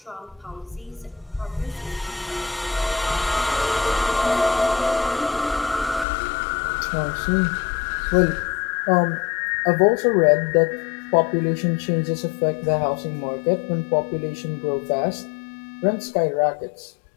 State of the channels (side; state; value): right; drops out; at 6.1 s